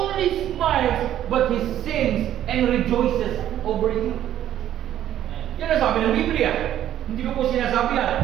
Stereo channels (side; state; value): left; quieter; 11.6 dB